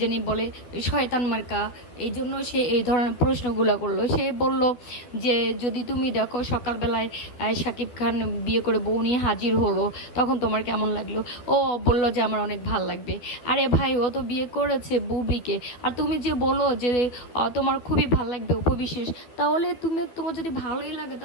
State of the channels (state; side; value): late; right; 12 ms